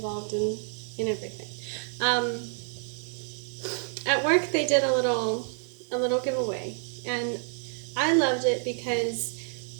in everything. Um, at work, they did a little giveaway, and I loved it because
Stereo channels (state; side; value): silent; left; digital silence